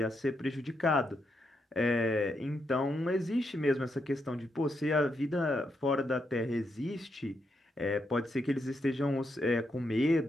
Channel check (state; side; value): normal; both; correlation 0.81